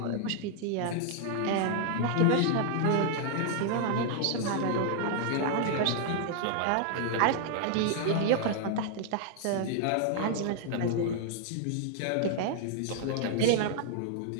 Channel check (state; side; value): different; both; correlation -0.01